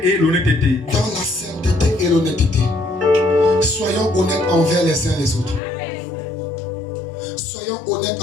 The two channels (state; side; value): drops out; right; at 5.6 s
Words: et l'honnêteté. Dans la sainteté et l'honnêteté. Soyons honnêtes envers les uns les autres. Soyons honnêtes